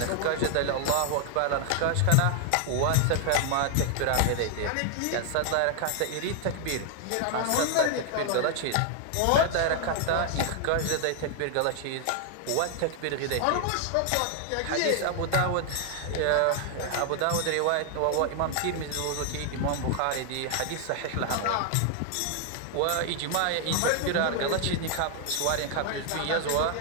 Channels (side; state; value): both; different; correlation 0.00